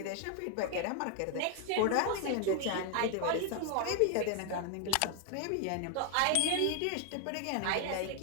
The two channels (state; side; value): different; both; correlation 0.01